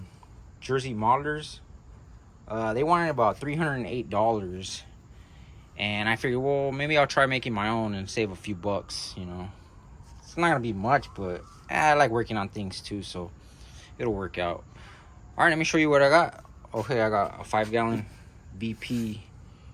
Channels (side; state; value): both; identical; correlation 1.00